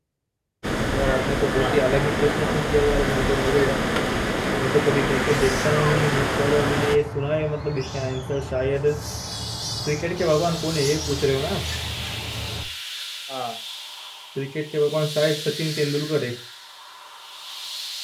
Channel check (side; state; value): both; identical; correlation 1.00